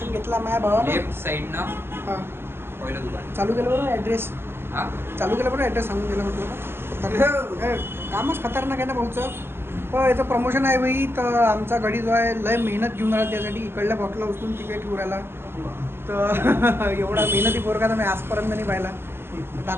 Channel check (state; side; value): late; left; 0.11 ms